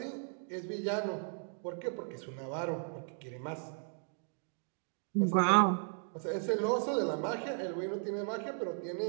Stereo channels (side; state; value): left; silent; 54 dB below the other